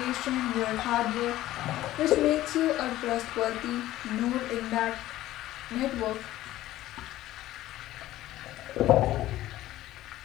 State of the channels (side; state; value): right; quieter; 15.0 dB